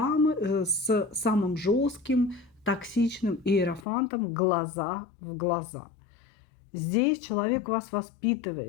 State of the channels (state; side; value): drops out; right; at 3.9 s